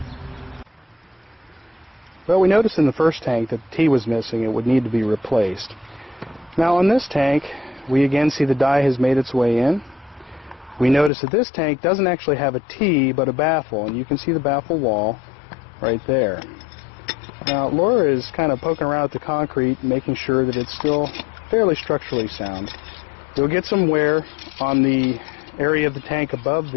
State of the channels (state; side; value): drops out; right; at 11.1 s